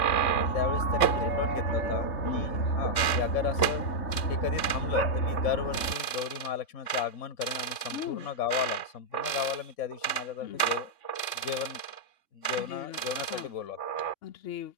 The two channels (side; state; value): right; late; 3.6 ms